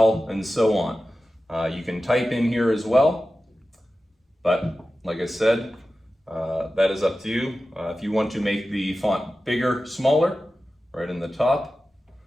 and so on. You can type in here as well. But like I said, that is up to you. If you want to make the font bigger, smaller, right in the top.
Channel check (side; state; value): both; normal; correlation 0.94